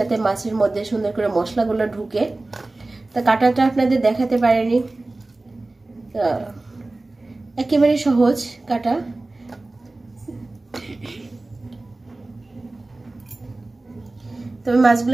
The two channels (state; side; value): quieter; left; 3.0 dB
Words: মাছের মধ্যে সুন্দর করে মশলাগুলো ঢুকে। তা কাটাটা আপনাদের দেখাতে পারিনি, একেবারে সহজ কাটা। তবে